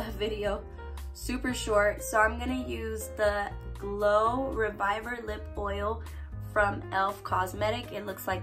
video super short. So I'm gonna use the Glow Reviver Lip Oil from e.l.f. Cosmetic. It looks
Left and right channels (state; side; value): identical; both; correlation 1.00